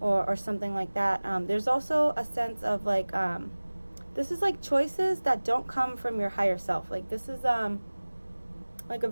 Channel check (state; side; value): inverted; both; correlation -1.00